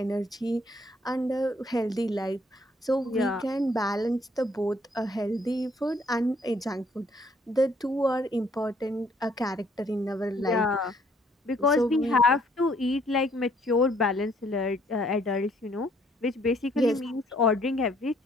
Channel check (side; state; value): both; normal; correlation 0.65